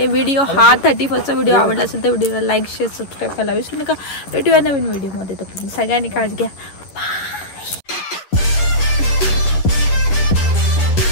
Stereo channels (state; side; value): late; right; 11 ms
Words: व्हिडिओ हा 31st व्हिडिओ आवडला असेल तर व्हिडिओला लाईक शेअर सबस्क्राईब करायला विसरू नका. भेटूया नवीन व्हिडिओमध्ये. तर सगळ्यांनी काळजी घ्या. बाय.